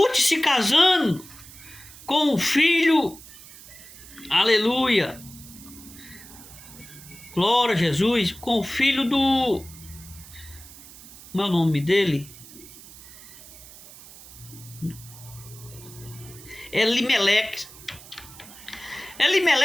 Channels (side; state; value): right; noise; hiss, 18 dB below the sound